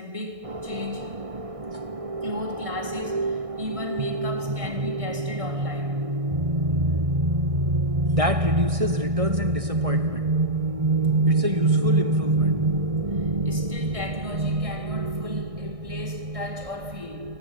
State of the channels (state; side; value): late; left; 1.6 ms